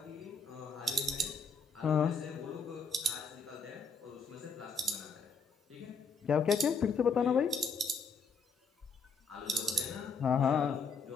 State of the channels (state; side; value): quieter; right; 4.6 dB